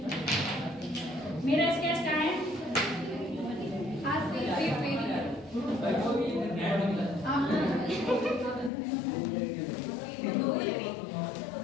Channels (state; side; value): drops out; right; at 8.7 s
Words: मेरा स्केच क्या है,